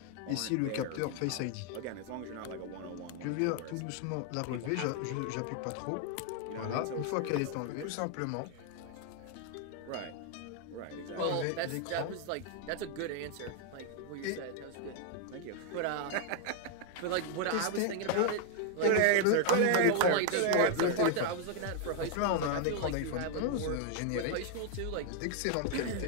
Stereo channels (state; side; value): different; both; correlation 0.00